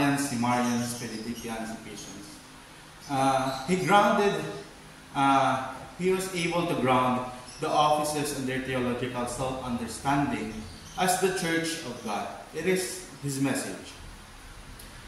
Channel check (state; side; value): identical; both; correlation 1.00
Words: Simarians, Benedictians, Ephesians, he was able to ground the offices and their theological self-understanding as the Church of God. It is his message.